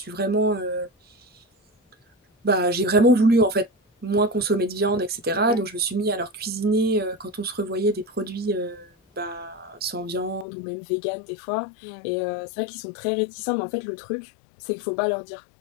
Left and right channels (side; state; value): right; drops out; at 10.5 s